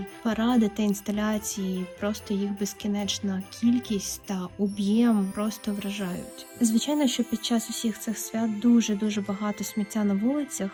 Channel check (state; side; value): identical; both; correlation 1.00